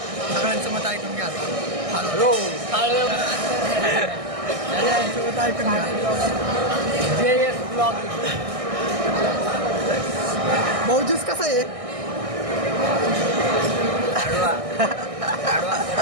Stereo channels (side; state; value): left; late; 1.6 ms